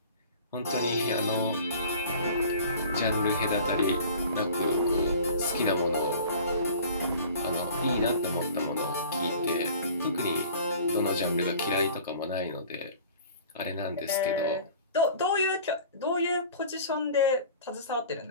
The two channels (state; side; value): inverted; both; correlation -0.44